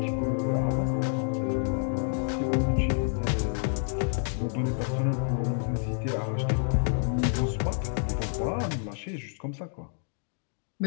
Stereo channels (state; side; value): silent; right; 59 dB below the other